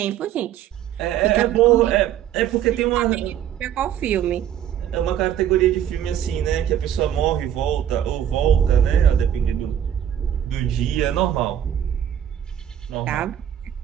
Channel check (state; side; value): quieter; left; 10.2 dB